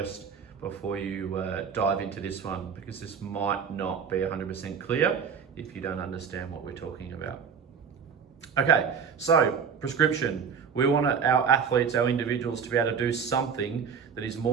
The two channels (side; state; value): left; quieter; 6.7 dB